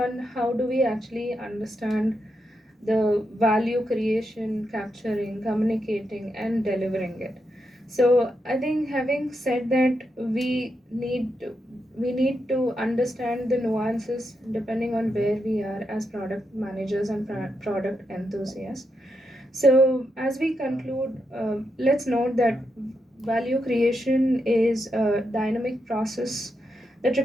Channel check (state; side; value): normal; both; correlation 0.83